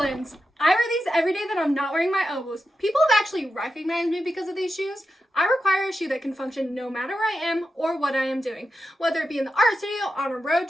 I wear these every day that I'm not wearing my Oboz. People have actually recognized me because of these shoes. I require a shoe that can function no matter where I am or what I am doing. Whether it be in the art studio, on a road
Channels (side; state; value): both; normal; correlation 0.89